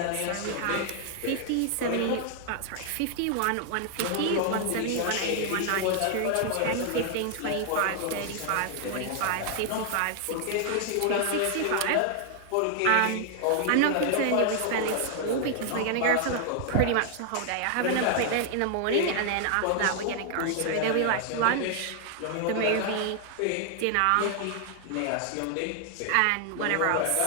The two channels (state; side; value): different; both; correlation 0.00